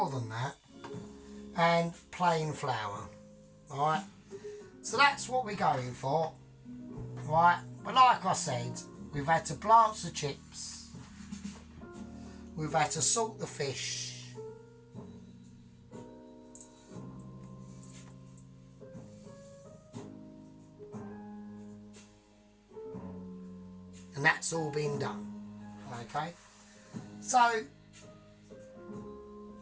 than that, and plain flour. Alright, so that's what we're going for. Right, but like I said, we've had to blanch the chips, we've had to salt the fish, and that's all been done. Okay, so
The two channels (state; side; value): identical; both; correlation 1.00